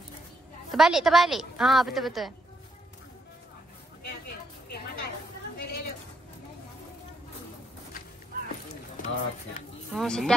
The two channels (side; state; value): both; normal; correlation 0.76